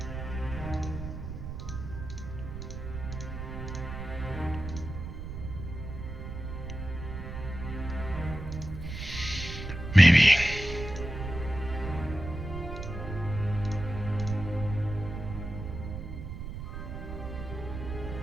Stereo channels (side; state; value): right; noise; rumble, 7 dB below the sound